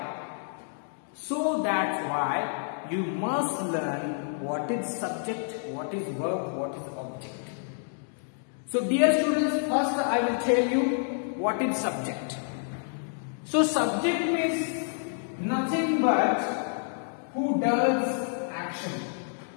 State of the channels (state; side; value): silent; right; digital silence